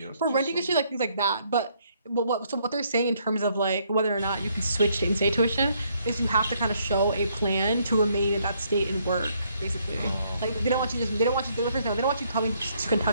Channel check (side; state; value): both; inverted; correlation -0.70